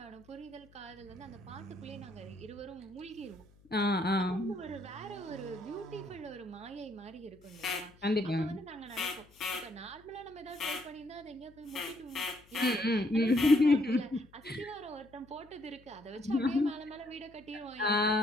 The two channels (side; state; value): left; noise; hum, 27 dB below the sound